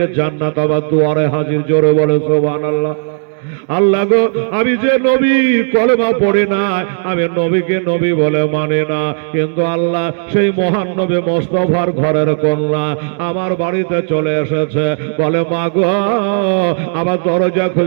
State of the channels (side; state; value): left; silent; digital silence